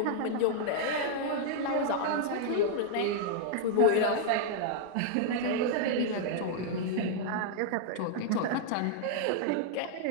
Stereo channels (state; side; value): different; both; correlation -0.01